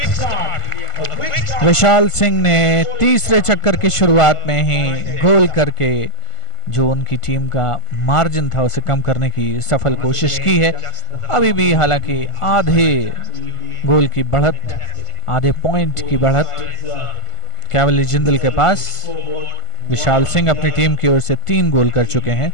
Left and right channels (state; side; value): late; right; 1.5 ms